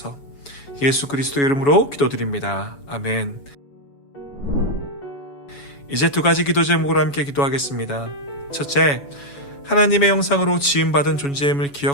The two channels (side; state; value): right; late; 7.1 ms